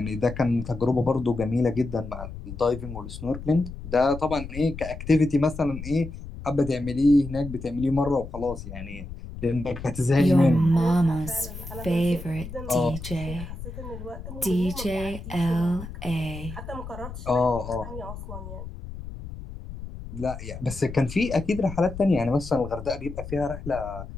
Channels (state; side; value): noise; left; rumble, 11 dB below the sound